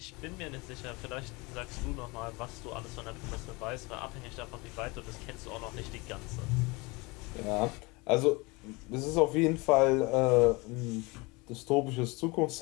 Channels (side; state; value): right; quieter; 25.8 dB